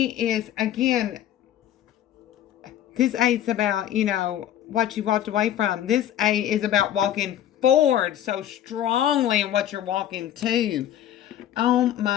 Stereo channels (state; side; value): quieter; right; 11.4 dB